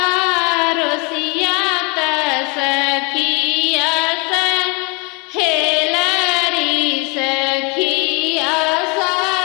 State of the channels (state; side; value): quieter; right; 31.5 dB